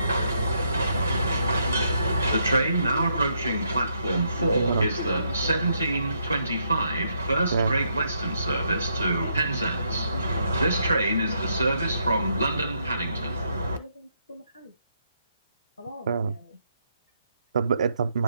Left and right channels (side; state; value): both; inverted; correlation -0.76